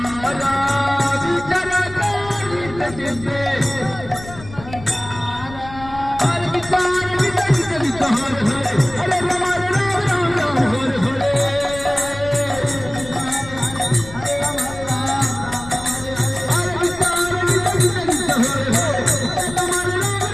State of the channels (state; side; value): noise; left; rumble, 15 dB below the sound